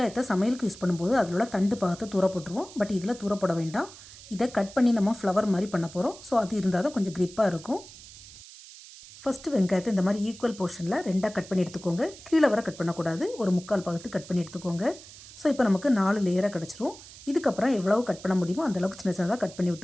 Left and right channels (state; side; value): noise; right; hiss, 18 dB below the sound